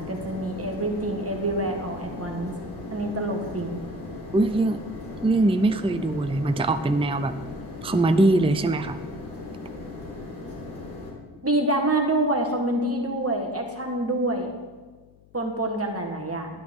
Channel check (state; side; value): noise; left; hum, 28 dB below the sound